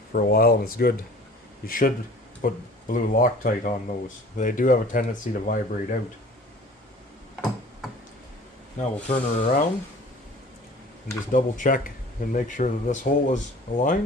for a while and it's good, you should put blue Loctite on those. They do have a tendency to vibrate out. Now we'll turn her around and just double check and make sure that this hole is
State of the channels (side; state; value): both; normal; correlation 0.46